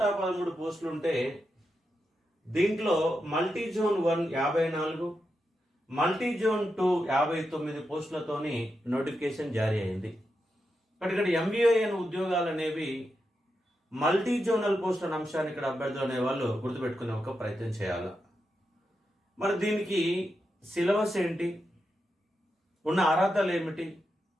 పోస్టులు ఉంటే దీంట్లో మల్టీ జోన్ 1 54, మల్టీ జోన్ 2 59 పోస్టులతోని నోటిఫికేషన్ జారీ అయింది. ఇక్కడ ఎంబీఏఎన్ ఉద్యోగాలు అనేవి మల్టీ జోనల్ పోస్ట్ అనే అంశాన్ని ఇక్కడ అభ్యర్థులు అనేవాళ్ళు గుర్తుపెట్టుకునే ఒక ప్రయత్నం చేయాలి. మరి దీనికి సిలబస్ ఏంటి, ఉన్న అర్హతలు ఏమిటి?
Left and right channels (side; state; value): both; normal; correlation 0.87